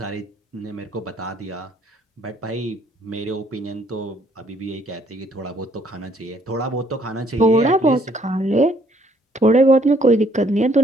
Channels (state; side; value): normal; both; correlation 0.65